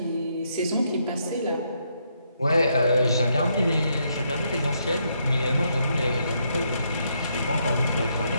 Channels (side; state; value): both; inverted; correlation -0.76